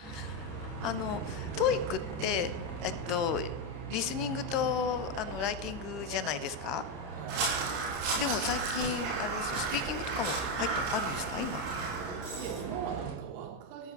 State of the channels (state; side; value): late; left; 30 ms